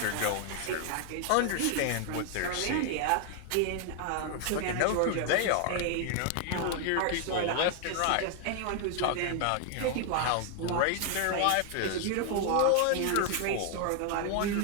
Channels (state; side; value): different; both; correlation 0.00